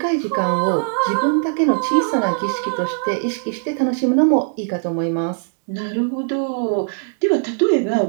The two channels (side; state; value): left; silent; digital silence